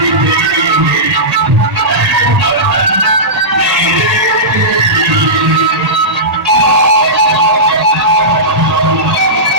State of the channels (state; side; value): late; left; 1.8 ms